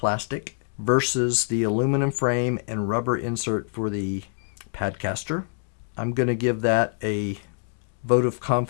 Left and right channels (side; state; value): right; silent; digital silence